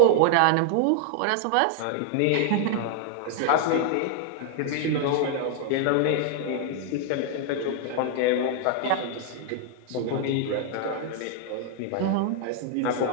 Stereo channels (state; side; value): different; both; correlation 0.00